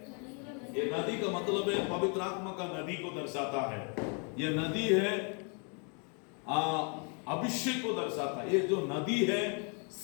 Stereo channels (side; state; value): right; quieter; 37.2 dB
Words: ये नदी का मतलब है पवित्र आत्मा का नदी को दर्शाता है। ये नदी है अभिषेक को दर्शाता है। ये जो नदी है